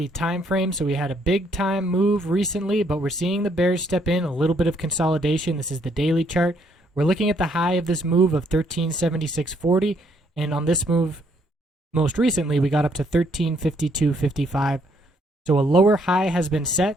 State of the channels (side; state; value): both; normal; correlation 0.70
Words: time frame. So we had a big time move recently, but we're seeing the bears step in, a little bit of consolidation. This is the daily chart. We're looking at the high of this move of 1376.40, and on this move most recently we got up to 1352.55. So a lower high has been